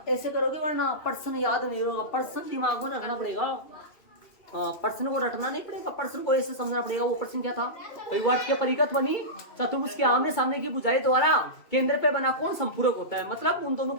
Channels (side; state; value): right; late; 2.6 ms